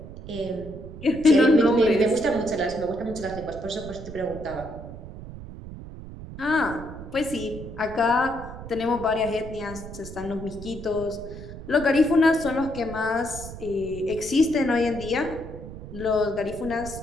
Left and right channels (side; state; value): right; noise; rumble, 12 dB below the sound